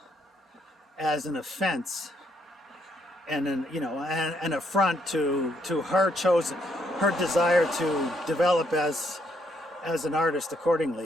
as an offense and an affront to her desire to develop as an artist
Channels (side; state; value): both; normal; correlation 0.73